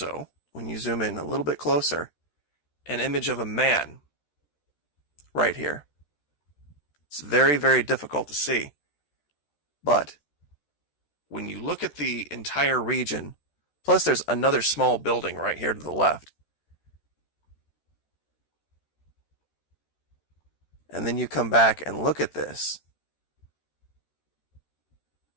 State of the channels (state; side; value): late; right; 13 ms